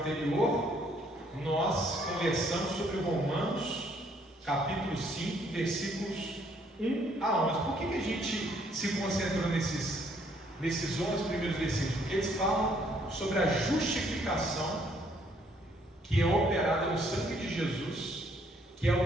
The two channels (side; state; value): both; normal; correlation 0.66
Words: nós conversamos sobre Romanos capítulo 5, versículos 1 a 11. Por que a gente se concentrou nesses 11 primeiros versículos? Porque eles falam sobre a justificação que é operada no sangue de Jesus, que é